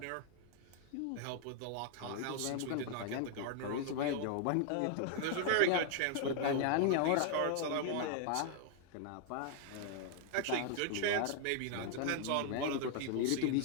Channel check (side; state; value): both; different; correlation 0.00